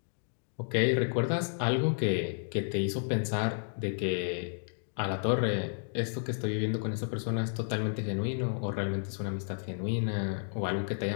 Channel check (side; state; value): right; silent; digital silence